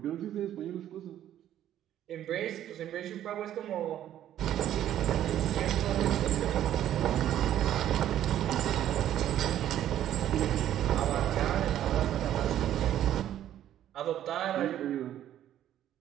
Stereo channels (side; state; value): left; quieter; 11.6 dB